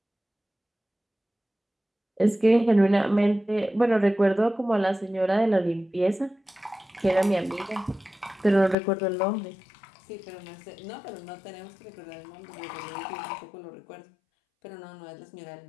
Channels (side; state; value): right; drops out; at 8.8 s